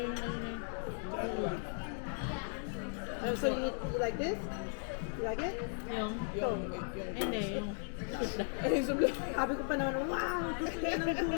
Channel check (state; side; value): silent; right; 53 dB below the other